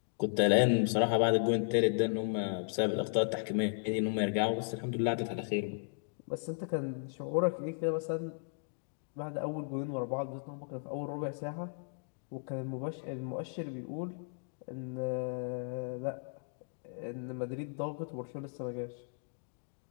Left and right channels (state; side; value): silent; right; digital silence